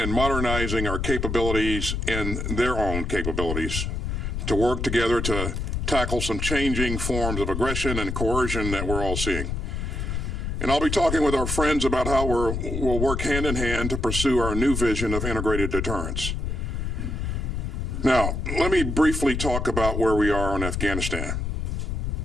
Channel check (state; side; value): noise; left; rumble, 2 dB below the sound